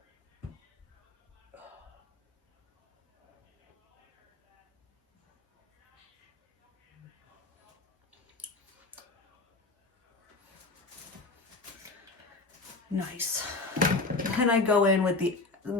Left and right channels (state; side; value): quieter; right; 3.5 dB